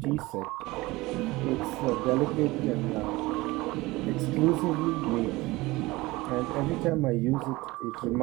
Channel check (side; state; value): left; quieter; 20.8 dB